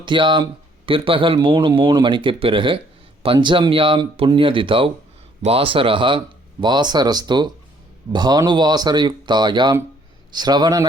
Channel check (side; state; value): both; normal; correlation 0.63